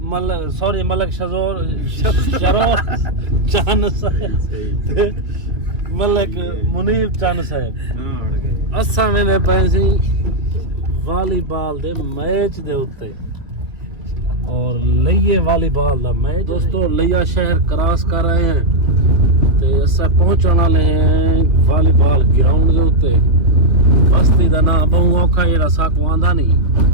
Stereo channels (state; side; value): late; left; 2.2 ms